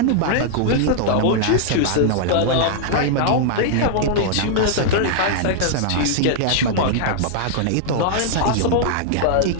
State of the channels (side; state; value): both; different; correlation -0.01